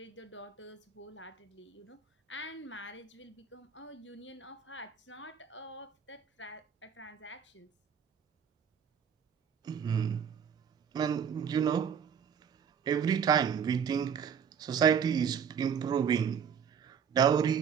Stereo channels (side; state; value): left; quieter; 7.4 dB